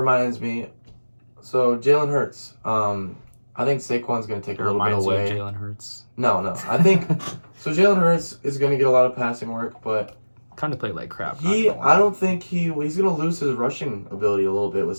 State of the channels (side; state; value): both; inverted; correlation -1.00